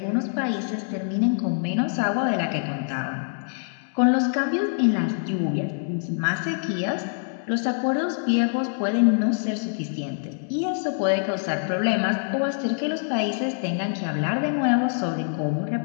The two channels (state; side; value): silent; right; 60 dB below the other